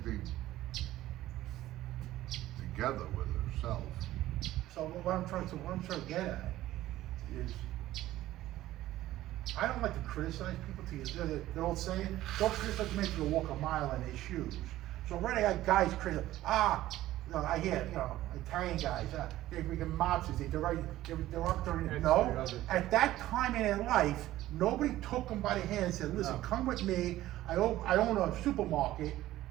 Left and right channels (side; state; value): left; quieter; 15.0 dB